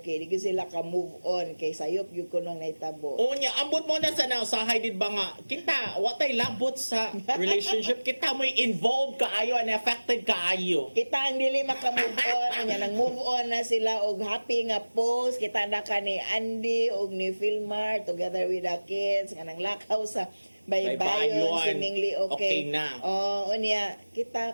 Di gyud sila ka-move on. Kay sayop gyud ko nung naitabo. O niya, ambot mo na sa nausahay did ba nga, kita, watay labot sa relationship, kita mo'y involved kaayo and affected kaayo. Kita ang dili maka-move on. Nya nang move on na sila og happy nga post. Kita na ka ni Andy og ni Filmar together with the kids. Nga nang lakaw sa baybayon, Baybayon. seemingly okay. Okay na. Unya,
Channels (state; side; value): inverted; both; correlation -1.00